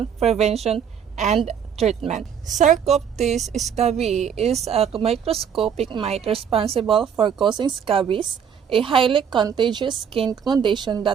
prevention, and treatment. Sarcoptes scabiei is a microscopic mite responsible for causing scabies, a highly contagious skin condition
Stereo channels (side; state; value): left; quieter; 7.7 dB